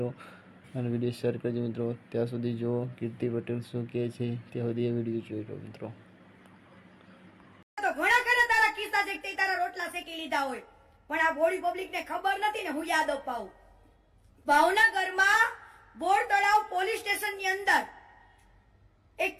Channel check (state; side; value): identical; both; correlation 1.00